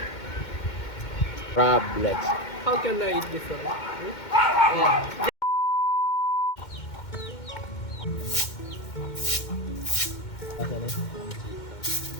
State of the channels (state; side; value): late; right; 2.2 ms